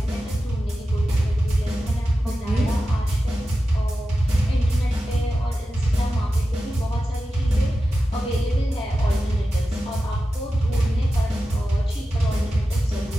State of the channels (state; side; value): normal; both; correlation 0.93